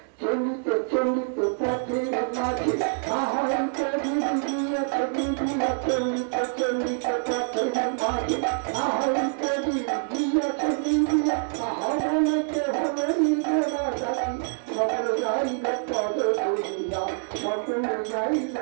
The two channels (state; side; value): silent; left; 61 dB below the other